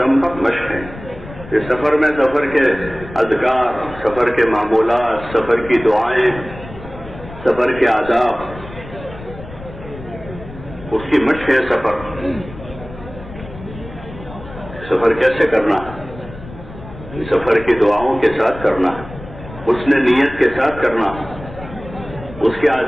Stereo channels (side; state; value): left; noise; rumble, 15 dB below the sound